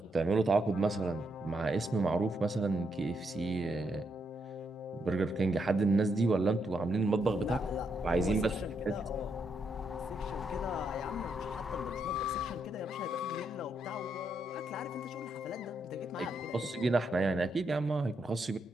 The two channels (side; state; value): both; normal; correlation 0.79